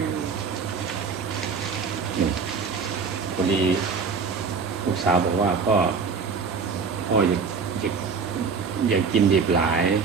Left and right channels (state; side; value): quieter; left; 5.3 dB